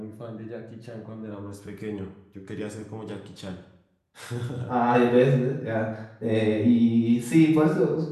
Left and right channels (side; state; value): both; identical; correlation 1.00